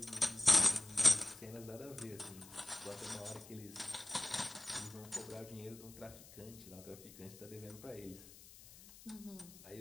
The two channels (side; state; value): left; noise; hiss, 18 dB below the sound